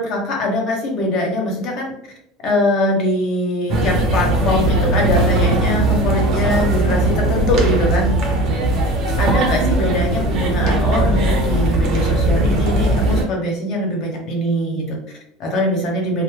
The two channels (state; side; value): normal; both; correlation 0.37